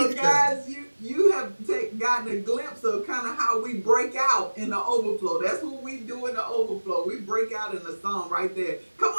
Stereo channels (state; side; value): inverted; both; correlation -1.00